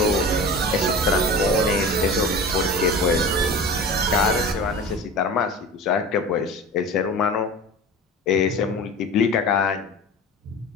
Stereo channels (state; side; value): normal; both; correlation 0.34